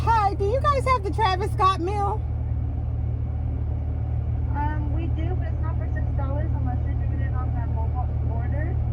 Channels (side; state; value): both; identical; correlation 1.00